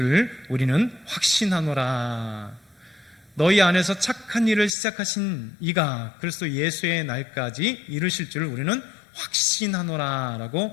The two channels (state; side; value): drops out; right; at 4.7 s